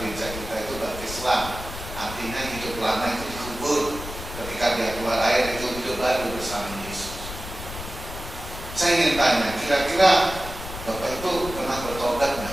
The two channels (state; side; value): noise; left; rumble, 10 dB below the sound